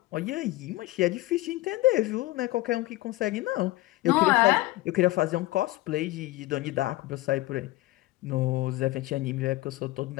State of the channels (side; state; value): right; quieter; 18.6 dB